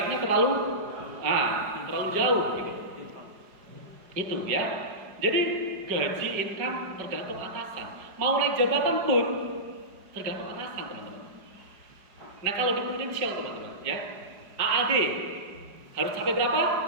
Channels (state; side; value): late; left; 5.2 ms